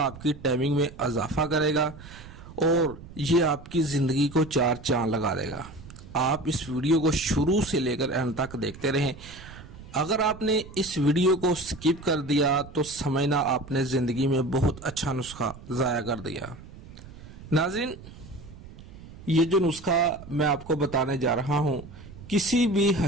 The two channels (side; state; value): right; noise; rumble, 17 dB below the sound